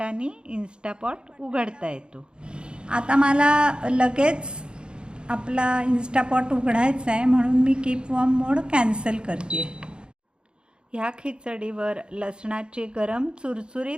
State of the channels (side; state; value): left; late; 0.051 ms